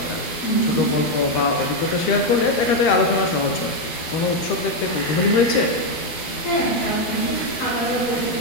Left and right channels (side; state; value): right; late; 12 ms